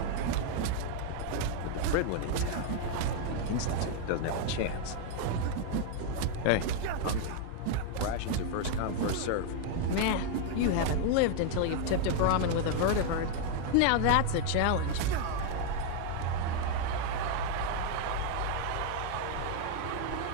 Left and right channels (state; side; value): different; both; correlation 0.00